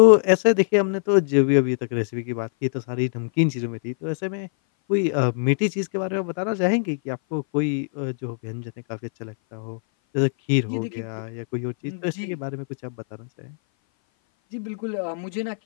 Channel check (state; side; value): silent; right; 58 dB below the other